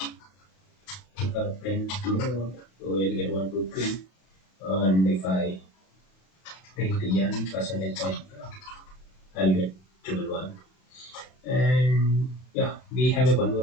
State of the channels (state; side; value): late; right; 32 ms